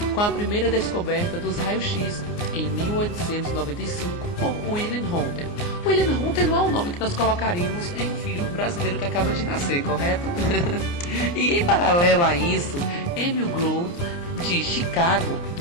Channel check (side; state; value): right; late; 29 ms